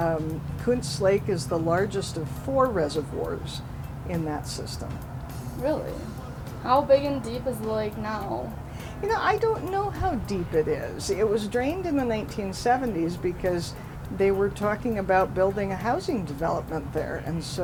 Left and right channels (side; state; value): both; identical; correlation 1.00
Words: Kuntz Lake is the largest of 4 reservoirs in that system. Really? How big and deep is the lake now? You know, I don't know how deep it is. It was drained in the 1970s because they were talking about building a housing development there, and